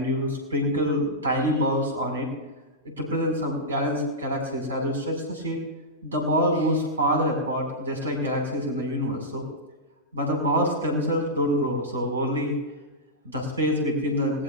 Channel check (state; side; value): normal; both; correlation -0.12